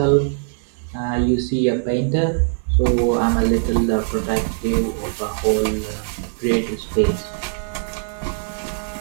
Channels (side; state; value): left; silent; digital silence